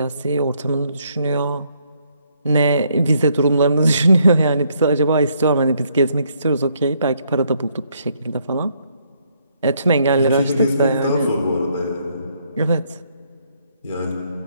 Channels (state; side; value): inverted; both; correlation -0.71